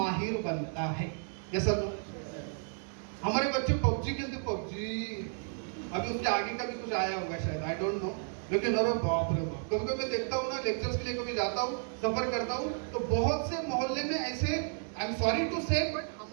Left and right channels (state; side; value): silent; left; 56 dB below the other